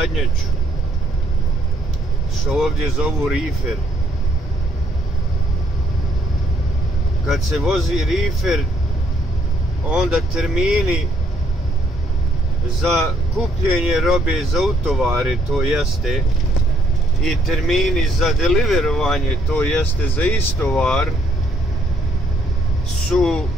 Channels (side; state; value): both; normal; correlation 0.69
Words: što ovdje zovu rifer. Kad se vozi rifer, onda termini za kupljenje robe za utovare, to jeste, i termini za deliverovanje, to jeste za istovar, su